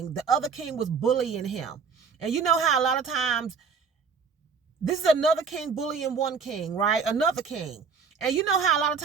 The other king was bullying him. And you know how a lot of times, this is another king bullying one king, right? Another king. And you know how a lot of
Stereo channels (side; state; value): left; quieter; 5.6 dB